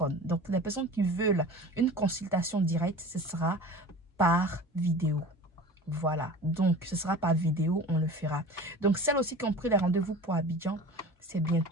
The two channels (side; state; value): both; normal; correlation 0.38